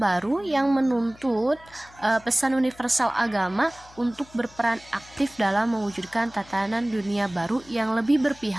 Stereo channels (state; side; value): noise; left; hum, 24 dB below the sound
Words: yang menuntut pesan universal agama untuk berperan aktif dalam mewujudkan tatanan dunia baru yang lebih